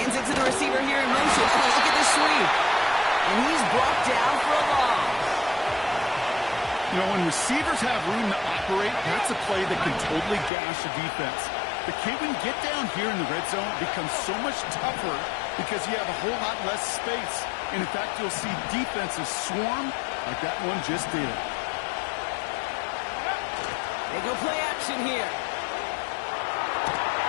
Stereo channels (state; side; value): drops out; right; at 10.5 s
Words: it to the receiver here in motion. Oh, look at this sweep. And he's brought down for a loss. You know, when receivers have room to operate, that's a play that can totally gash a defense. But when you get down here in the red zone, it becomes so much tougher because you have a whole lot less space. And in fact, you'll see defenses swarm like that one just did. They go play action here.